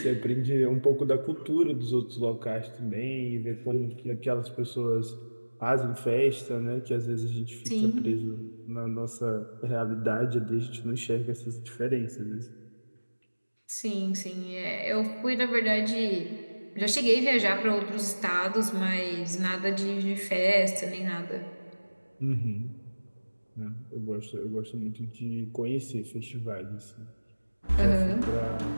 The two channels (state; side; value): inverted; both; correlation -1.00